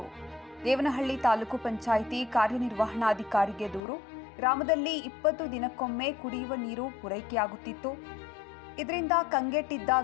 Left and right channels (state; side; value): drops out; right; at 3.8 s